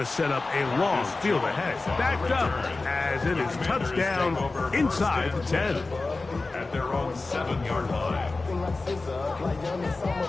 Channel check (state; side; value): quieter; right; 3.5 dB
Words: set up a long field ahead. Backed up as it is touchdown inside the 10. At their own 7-yard line.